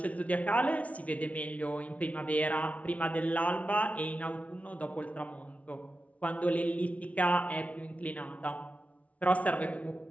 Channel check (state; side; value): late; right; 0.066 ms